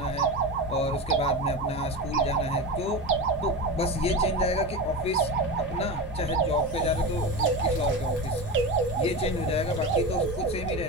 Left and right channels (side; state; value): both; normal; correlation 0.23